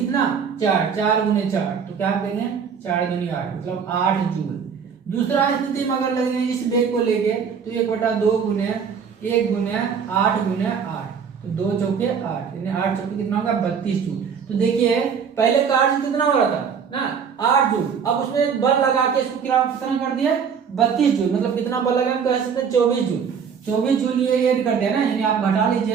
4, 4 गुने 4, तो क्या करेंगे 4 दूनी 8, मतलब 8 जूल। दूसरा स्थिति में अगर लेंगे इस वेग को लेके तो 1/2 गुने 1 गुने 8 गुने 8, तो 2 चौके 8, यानी 8 चौके कितना होगा 32 जूल। तो देखिए पहले कार्य कितना हो रहा था ना 8 जूल, अब उसमें एक बल लगा के इसको कितना कर दिया 32 जूल, मतलब कितना बल लगा कह सकते हैं 24 जूल। 24 जूल ये ऐड कर दिया ना, यानी आप घटा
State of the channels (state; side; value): quieter; left; 6.7 dB